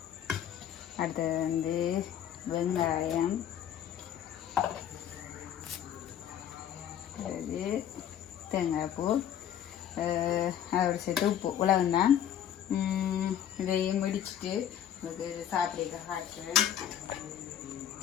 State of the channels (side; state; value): right; quieter; 10.0 dB